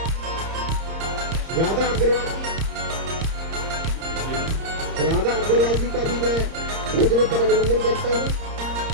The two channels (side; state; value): left; late; 30 ms